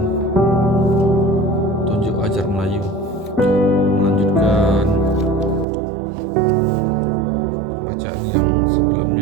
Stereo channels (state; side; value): drops out; left; at 5.7 s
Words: Tunjuk Ajar Melayu, melanjutkan pembacaan yang